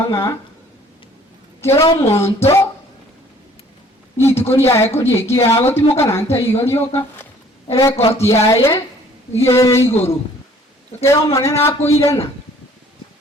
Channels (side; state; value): both; normal; correlation 0.56